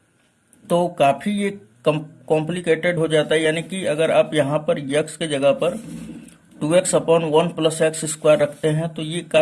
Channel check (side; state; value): both; identical; correlation 1.00